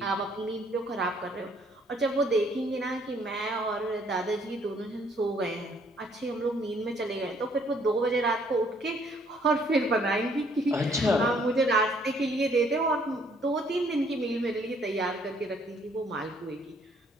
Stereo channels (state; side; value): normal; both; correlation 0.64